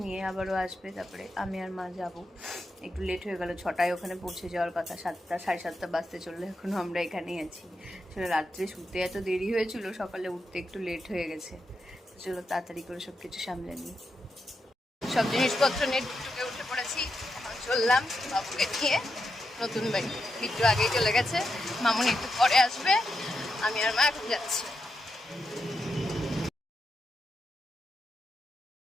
নিয়ে, আবারও আসবে, তারপরে আমি আর মা যাব। একটু লেট হয়ে গেল, 6টায় ওখানে পৌঁছে যাওয়ার কথা, 7টা 7:30 বাজতে চললো, এখনও আমরা এখানেই আছি। আসলে রাত্রে শুতে এত দেরি হয়েছিল, সকালে উঠতে একটু লেট হয়ে গেছে। চলো তাড়াতাড়ি করে সব কিছু সামলে নিই। সব জিনিসপত্র নিয়ে টুকটুকে উঠে পড়েছি। এখন চললাম বাবুকে নিয়ে নতুন বাড়ি। বিট্টু আগেই চলে গেছে, মামুনি একটু পরে আসবে, আমি আর মা এখন যাচ্ছি।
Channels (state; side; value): normal; both; correlation 0.86